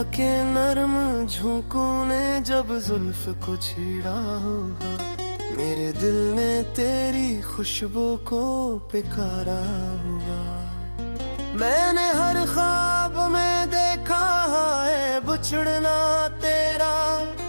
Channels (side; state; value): both; inverted; correlation -1.00